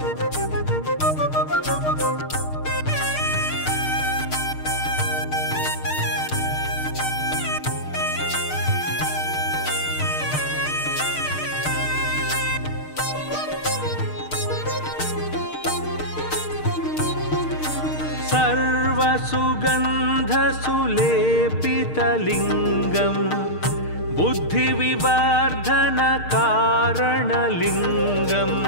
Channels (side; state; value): right; late; 6.6 ms